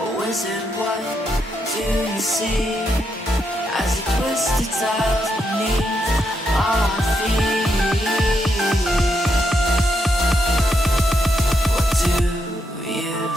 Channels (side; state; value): both; normal; correlation 0.80